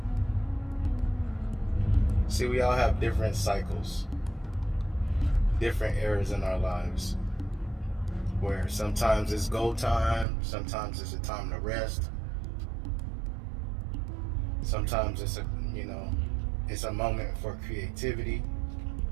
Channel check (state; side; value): drops out; left; at 10.2 s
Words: See, we all have different cycles, different eras in our lives, where sometimes it's go time, sometimes it's a time to rest, sometimes it's a moment for creativity,